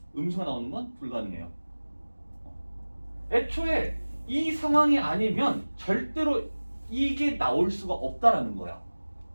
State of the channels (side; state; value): both; inverted; correlation -1.00